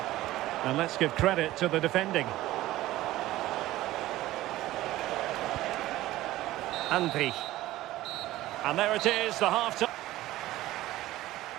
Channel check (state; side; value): quieter; left; 16.1 dB